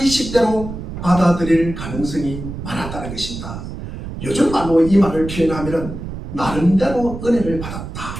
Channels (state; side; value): noise; right; rumble, 9 dB below the sound